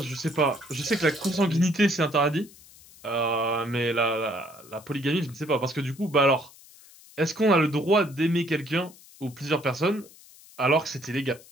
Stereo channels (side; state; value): left; noise; hiss, 23 dB below the sound